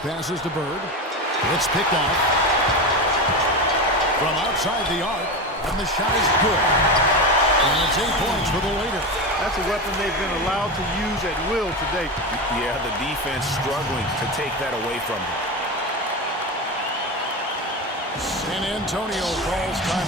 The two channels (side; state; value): both; normal; correlation 0.20